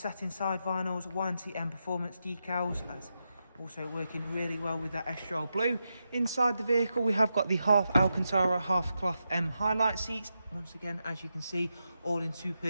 side vinyls, YNC Mperformance decals, that's also working really well with that Estrel Blue. Inside the vehicle we have got the half Alcantara, half cloth M highlight seats. Once again, as you can see, all in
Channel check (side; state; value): both; inverted; correlation -0.87